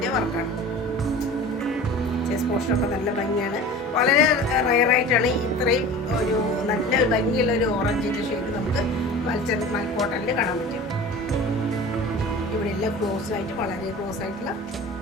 വർക്കാണ്. ചെസ്റ്റ് പോർഷനൊക്കെ നല്ല ഭംഗിയാണ്. വളരെ റയറായിട്ടാണ് ഇത്രയും ഒരു നല്ല ഭംഗിയുള്ള ഒരു ഓറഞ്ചിൻ്റെ ഷെയ്ഡ് നമുക്ക് മൽക്കോട്ടണിൽ കാണാൻ പറ്റും. ഇവിടെ എല്ലാം ക്ലോസ് ആയിട്ട്, വളരെ ക്ലോസ് ആയിട്ടുള്ള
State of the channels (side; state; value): both; normal; correlation 0.38